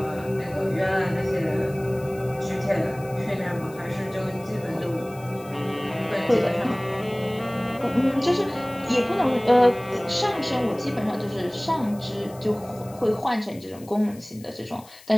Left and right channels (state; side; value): noise; left; hiss, 22 dB below the sound